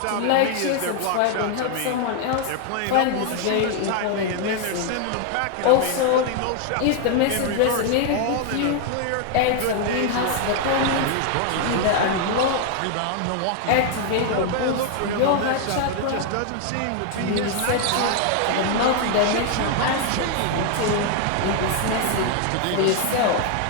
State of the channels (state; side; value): different; both; correlation 0.00